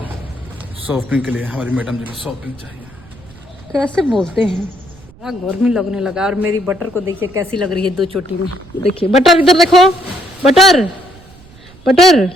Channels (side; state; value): right; noise; rumble, 23 dB below the sound